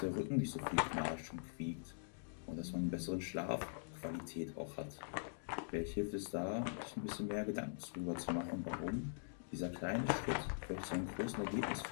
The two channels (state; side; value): silent; right; digital silence